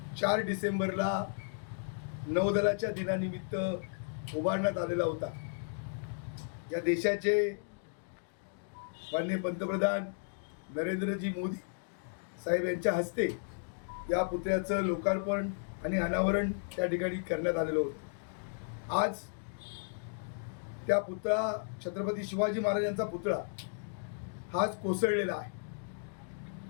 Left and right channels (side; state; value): right; silent; digital silence